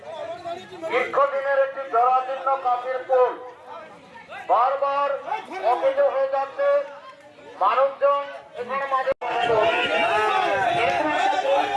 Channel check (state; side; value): identical; both; correlation 1.00